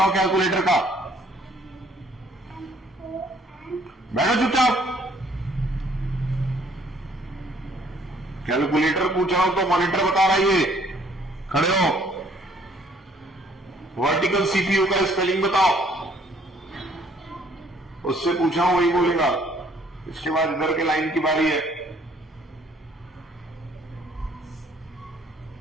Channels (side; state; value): both; normal; correlation 0.62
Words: कैलकुलेटर का। बैठो चुपचाप। कैलकुलेटर पूछ रहा हूं तो मॉनिटर बता रहा है ये। खड़े हो। वर्टिकल सीपीयू का स्पेलिंग बताओ। उससे पूछा हूं वही बोलेगा। इसके बाद इधर के लाइन की बारी है।